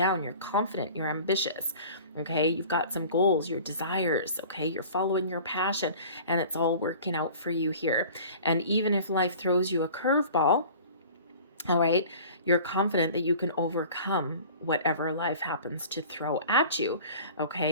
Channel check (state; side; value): inverted; both; correlation -0.44